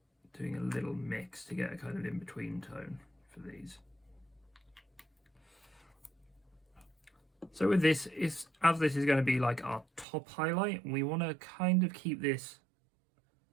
doing a little mix to get a kind of in-between tone for these. So with this, as this is going to be like our top highlight, we want to kind of keep this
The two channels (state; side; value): drops out; left; at 10.1 s